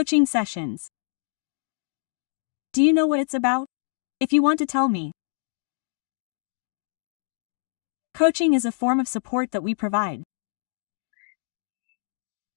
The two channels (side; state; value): right; silent; digital silence